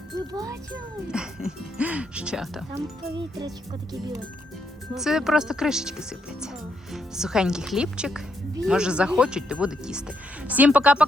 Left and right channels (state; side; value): normal; both; correlation 0.77